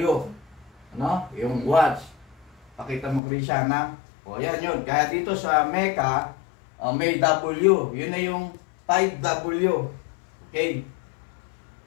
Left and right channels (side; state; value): right; drops out; at 3.2 s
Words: Ano? Yung watts. Pakita mo, Krishana. O yan yun. Kaya dito sa Mecca, may W. Yun na yung 5W. Okay.